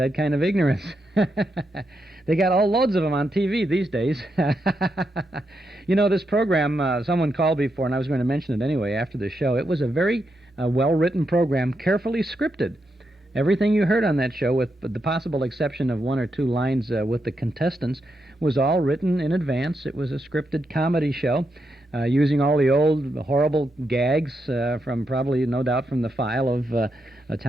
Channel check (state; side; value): normal; both; correlation 0.83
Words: kind of ignorance. They got all loads of them on TV these days. You know, this program, someone called before, and I was going to mention it anyway after the show. It was a very well-written program, carefully scripted. Everything you heard on that show, with the possible exception of one or two lines with the contestants, was all written in advance. It was a scripted comedy show using all the old horrible gags from probably, no doubt, from the file of